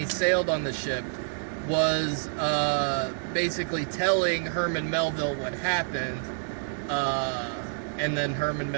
sailed on the ship, was basically telling Herman Melville what happened, and then Herman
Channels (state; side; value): silent; left; digital silence